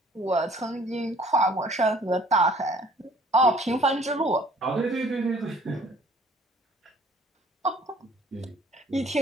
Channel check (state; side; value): normal; both; correlation 0.56